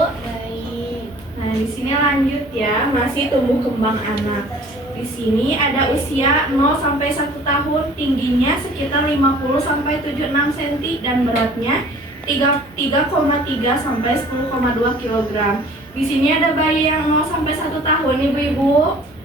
Baik. Nah di sini lanjut ya, masih tumbuh kembang anak. Di sini ada usia 0 sampai 1 tahun, tingginya sekitar 50 sampai 76 cm dan beratnya 3,3 sampai 10,2 kg. Di sini ada bayi yang 0 sampai 1 tahun ibu-ibu.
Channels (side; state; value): both; normal; correlation 0.50